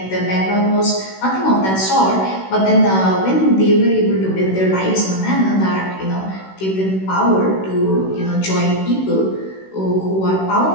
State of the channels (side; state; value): right; late; 16 ms